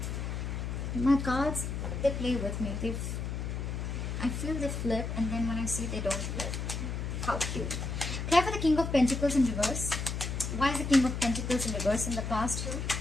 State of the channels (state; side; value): noise; left; hum, 3 dB below the sound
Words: My cards, they play with me. I feel they flip, and then when I see they don't flip. How cute. Apply for the King of Pentacles in reverse. Why is the King of Pentacles in reverse in the past here?